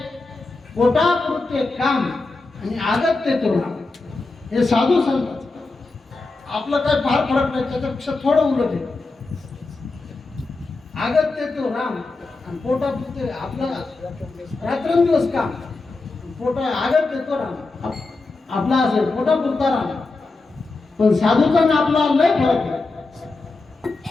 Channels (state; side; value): quieter; right; 3.5 dB